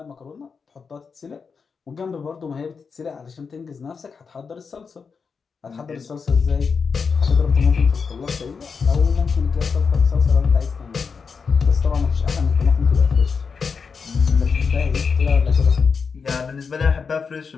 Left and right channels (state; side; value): quieter; right; 5.5 dB